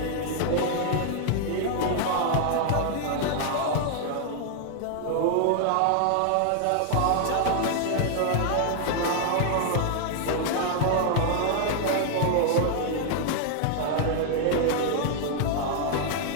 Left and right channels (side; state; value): both; different; correlation -0.01